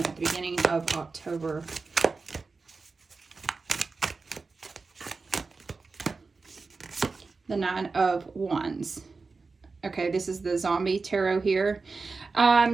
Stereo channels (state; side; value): quieter; left; 4.2 dB